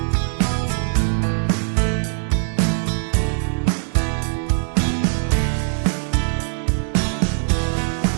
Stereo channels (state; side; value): silent; left; digital silence